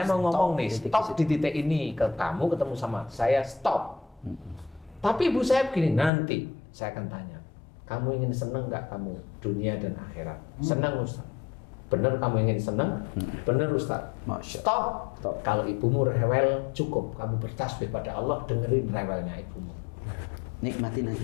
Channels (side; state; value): right; drops out; at 6.1 s